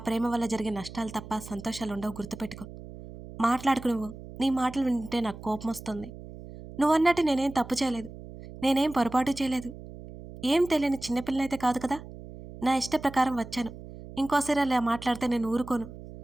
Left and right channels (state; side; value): noise; right; hum, 14 dB below the sound